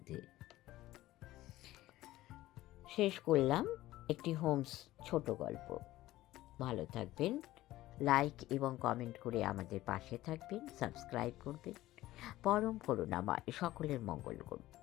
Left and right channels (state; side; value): quieter; right; 16.0 dB